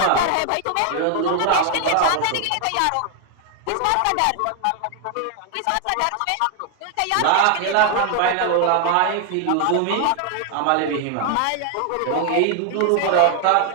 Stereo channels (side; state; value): both; different; correlation 0.00